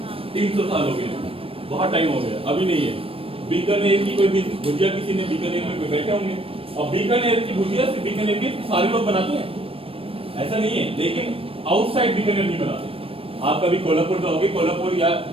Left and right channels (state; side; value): late; left; 0.27 ms